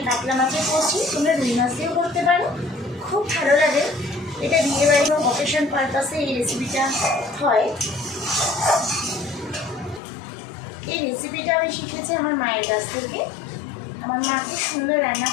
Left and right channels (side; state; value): right; drops out; at 10.0 s